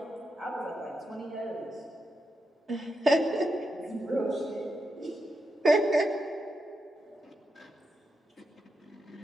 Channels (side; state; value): both; normal; correlation 0.85